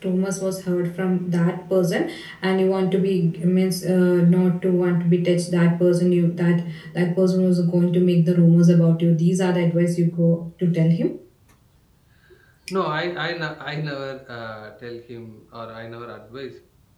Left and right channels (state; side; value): identical; both; correlation 1.00